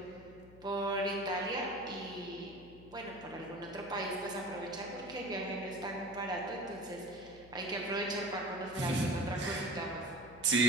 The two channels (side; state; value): left; noise; hum, 20 dB below the sound